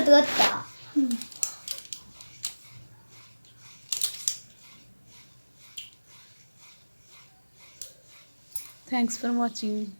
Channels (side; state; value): both; inverted; correlation -1.00